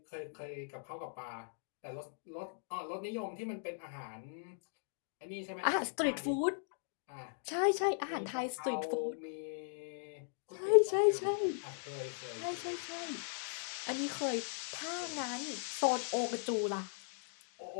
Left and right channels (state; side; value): silent; right; digital silence